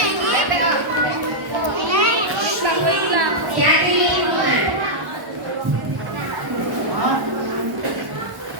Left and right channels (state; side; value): late; left; 1.1 ms